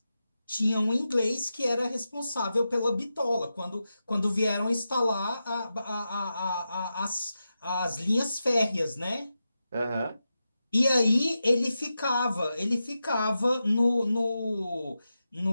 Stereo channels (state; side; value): inverted; both; correlation -0.90